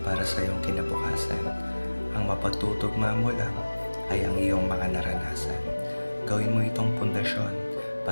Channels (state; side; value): inverted; both; correlation -1.00